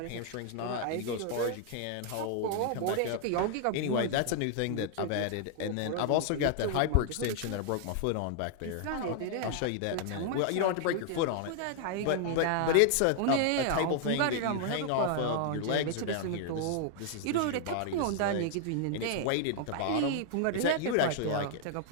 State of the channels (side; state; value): both; different; correlation 0.00